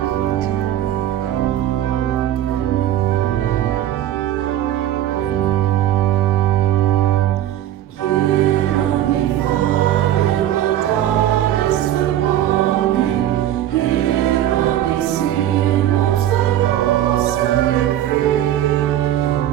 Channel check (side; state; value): left; quieter; 12.2 dB